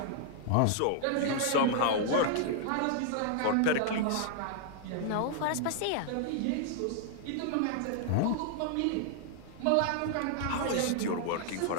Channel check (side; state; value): both; different; correlation -0.01